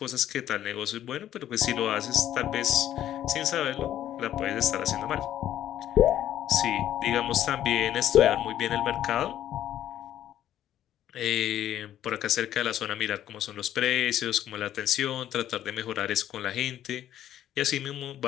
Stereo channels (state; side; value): quieter; right; 11.7 dB